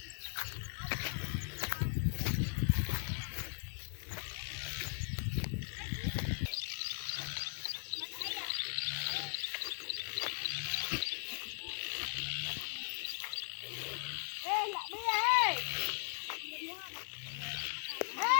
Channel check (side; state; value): right; silent; 52 dB below the other